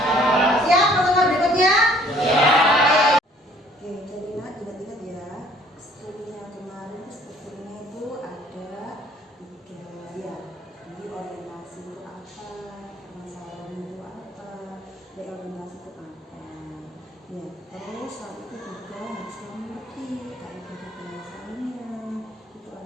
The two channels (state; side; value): normal; both; correlation 0.58